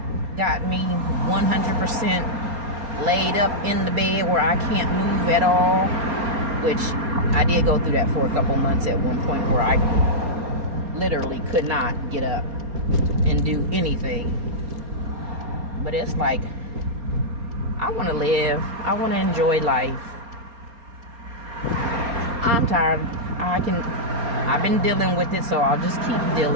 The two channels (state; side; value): late; left; 4.3 ms